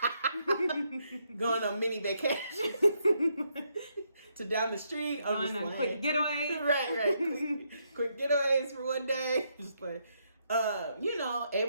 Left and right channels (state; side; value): inverted; both; correlation -0.77